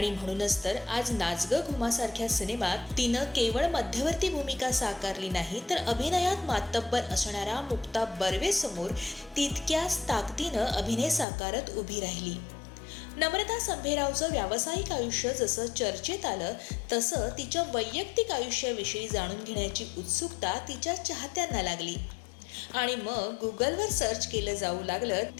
म्हणूनच तर आज नाच ग घुमासारख्या सिनेमात तिनं केवळ मध्यवर्ती भूमिका साकारली नाही, तर अभिनयात मातब्बर असणाऱ्या मुक्ता बर्वेसमोर तितक्याच ताकदीनं अभिनय साकारत उभी राहिली. नम्रता संभेरावचं व्यावसायिक आयुष्य जसं चर्चेत आलं, तसं तिच्या वैयक्तिक आयुष्याविषयी जाणून घेण्याची उत्सुकता तिच्या चाहत्यांना लागली. आणि मग गुगलवर सर्च केलं जाऊ लागलं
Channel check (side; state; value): right; drops out; at 11.2 s